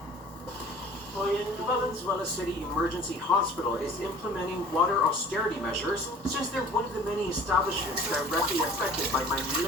The Valenzuela City Emergency Hospital is implementing water austerity measures since they're one of the many establishments directly affected by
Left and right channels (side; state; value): both; normal; correlation 0.46